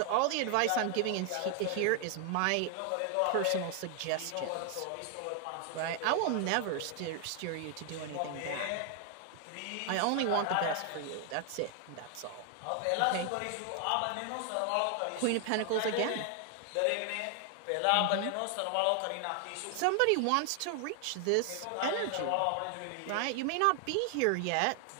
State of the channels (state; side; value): different; both; correlation 0.00